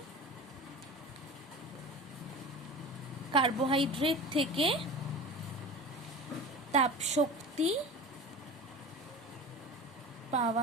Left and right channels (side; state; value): both; normal; correlation 0.34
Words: কার্বোহাইড্রেট থেকে তাপশক্তি